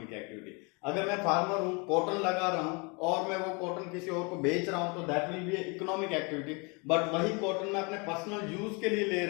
एक्टिविटी. अगर मैं फार्मर हूं, कॉटन लगा रहा हूं और मैं वो कॉटन किसी और को बेच रहा हूं तो that will be economic activity. But वही कॉटन मैं अपने पर्सनल यूज के लिए ले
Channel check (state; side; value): quieter; right; 31.1 dB